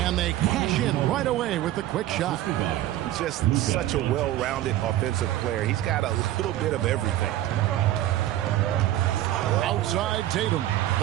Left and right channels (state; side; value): quieter; left; 13.9 dB